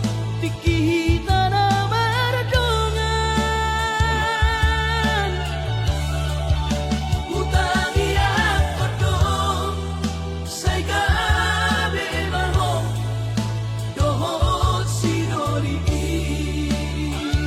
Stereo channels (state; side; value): identical; both; correlation 1.00